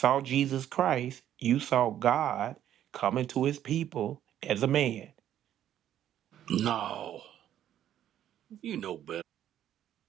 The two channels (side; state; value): left; quieter; 11.1 dB